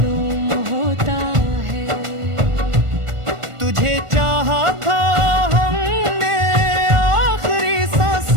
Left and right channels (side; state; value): left; late; 1.4 ms